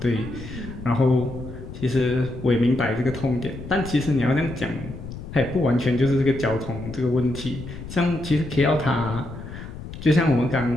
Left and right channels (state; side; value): noise; left; rumble, 11 dB below the sound